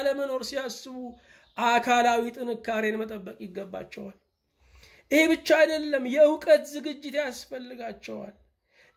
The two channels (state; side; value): identical; both; correlation 1.00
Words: ለመኖር ሲያስቡ አካላዊ ጥንካሬን መጠበቅ ይገባቸዋል። ይሄ ብቻ አይደለም፣ የዕውቀት ዝግጅት ያስፈልጋቸዋል።